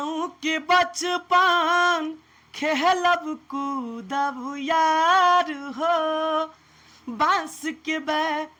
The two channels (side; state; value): both; identical; correlation 1.00